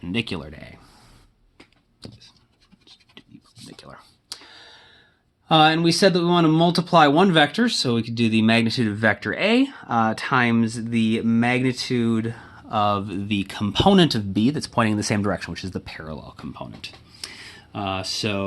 to A. Perpendicular. And we said that we want to multiply one vector, so we could do the magnitude of vector A times the magnitude of the component of B that's pointing in the same direction, which is the parallel component.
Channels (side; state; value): both; identical; correlation 1.00